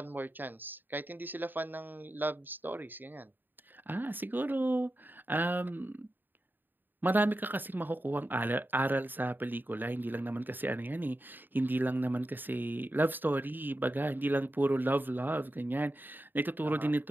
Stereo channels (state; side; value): late; left; 0.092 ms